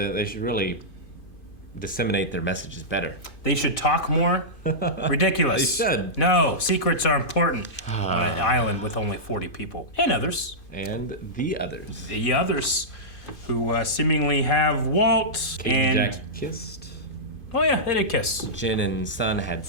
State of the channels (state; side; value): late; right; 2.5 ms